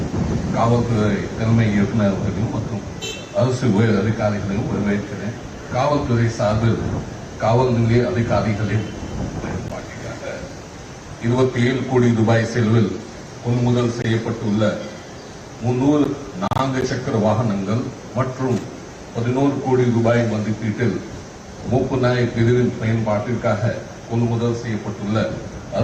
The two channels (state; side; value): identical; both; correlation 1.00